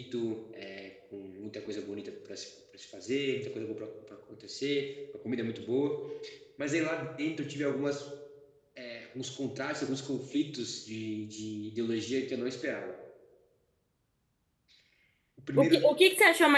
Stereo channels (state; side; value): identical; both; correlation 1.00